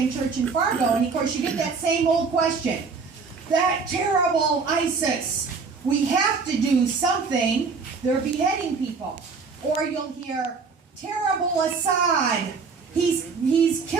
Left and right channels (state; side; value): quieter; left; 4.9 dB